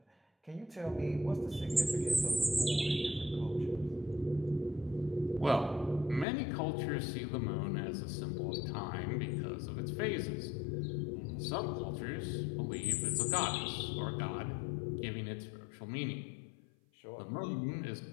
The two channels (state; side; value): drops out; right; at 6.2 s